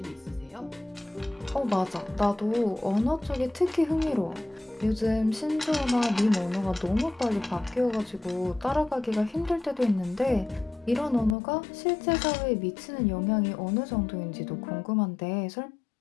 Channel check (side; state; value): right; drops out; at 11.4 s